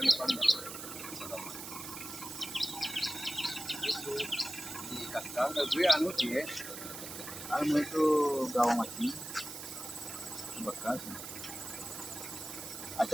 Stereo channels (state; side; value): noise; right; hiss, 9 dB below the sound